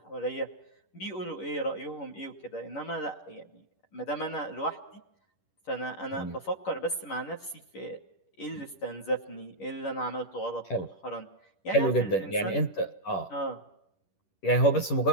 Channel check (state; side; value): late; right; 10 ms